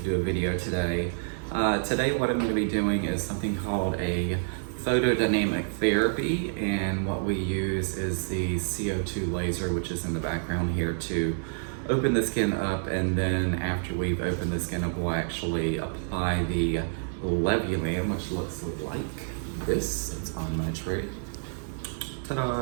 do a video today. Today, what I'm going to be doing is something called a photodynamic therapy, and what we use is the CO2 laser, which is in the background here, to open the skin up, and then after we've opened the skin up, we'll actually apply the Levulan, which looks like this. It's on my tray. Ta-da!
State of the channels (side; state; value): left; silent; digital silence